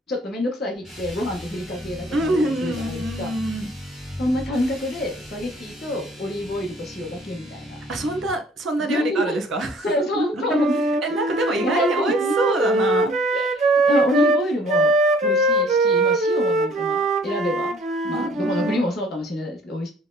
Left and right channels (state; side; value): normal; both; correlation 0.57